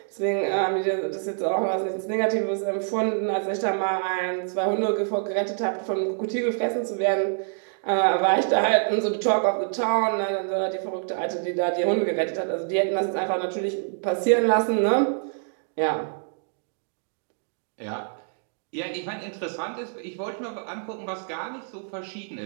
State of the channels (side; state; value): left; silent; digital silence